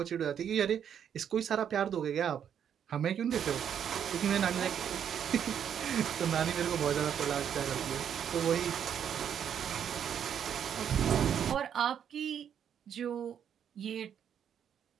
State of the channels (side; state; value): left; quieter; 8.7 dB